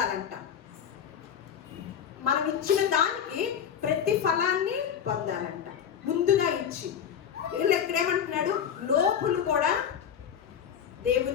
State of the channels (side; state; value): right; quieter; 8.4 dB